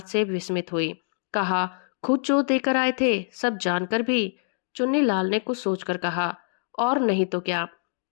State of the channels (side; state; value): right; silent; digital silence